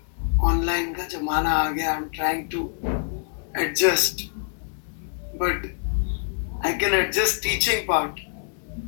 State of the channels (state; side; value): silent; right; digital silence